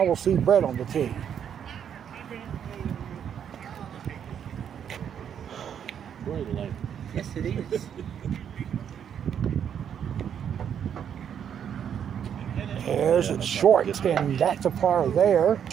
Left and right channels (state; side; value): quieter; left; 8.6 dB